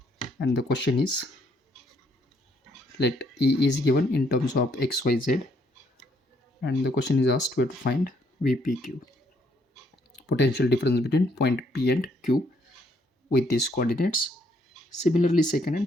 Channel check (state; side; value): normal; both; correlation 0.70